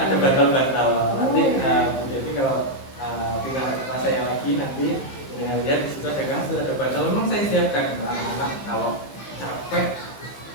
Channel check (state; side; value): late; right; 15 ms